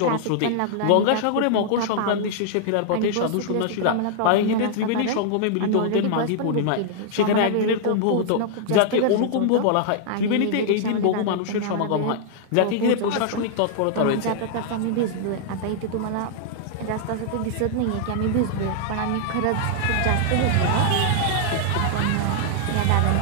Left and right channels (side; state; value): both; different; correlation -0.01